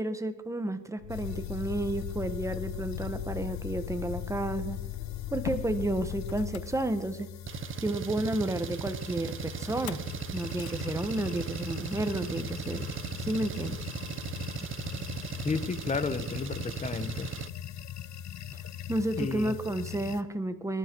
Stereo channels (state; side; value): normal; both; correlation 0.67